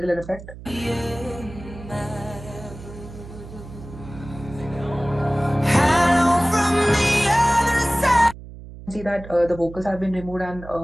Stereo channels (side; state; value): right; noise; hum, 15 dB below the sound